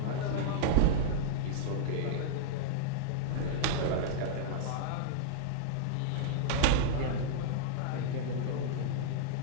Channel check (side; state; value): both; different; correlation -0.02